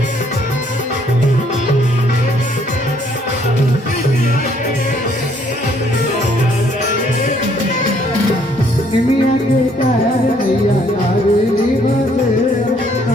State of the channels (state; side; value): normal; both; correlation 0.65